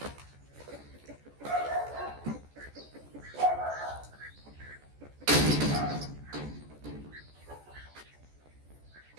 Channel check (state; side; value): late; left; 14 ms